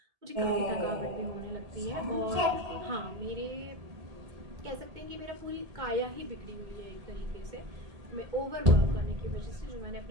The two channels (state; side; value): late; left; 1.8 ms